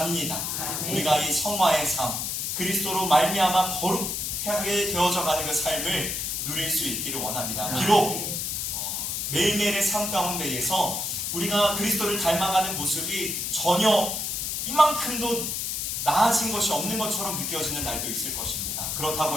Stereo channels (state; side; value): noise; left; hiss, 2 dB below the sound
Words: 우리가 이 성화의 삶, 그리스도로 말미암아 거룩하게 되어져 가는 그 삶을 누릴 수 있기를 원합니다. 비록 매일매일의 삶 가운데에서 우리가 그리스도를 닮아가는 모습이 전혀 이만큼도 나아진 것이 없는 것처럼 느껴지는 날도 있을 것입니다.